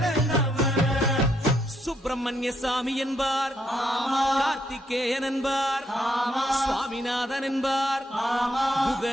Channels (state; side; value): normal; both; correlation 0.75